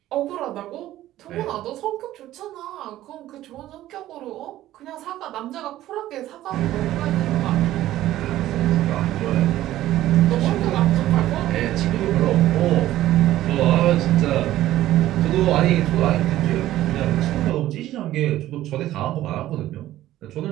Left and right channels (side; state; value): left; quieter; 14.3 dB